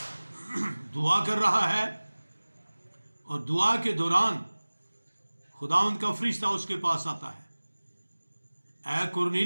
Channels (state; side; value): inverted; both; correlation -1.00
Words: دعا کر رہا ہے اور دعا کے دوران خداوند کا فرشتہ اس کے پاس آتا ہے، اے